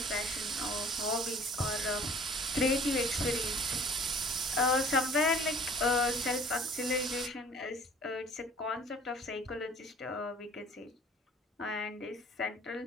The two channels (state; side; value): normal; both; correlation 0.51